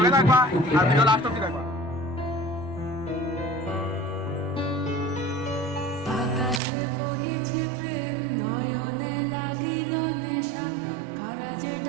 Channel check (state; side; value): drops out; left; at 6.6 s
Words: থাকবা আর ভিডিও লাস্ট অব্দি থাকবা।